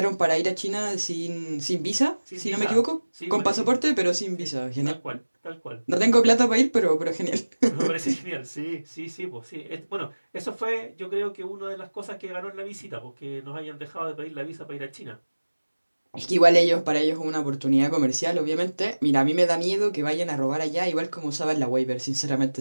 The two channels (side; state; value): both; inverted; correlation -1.00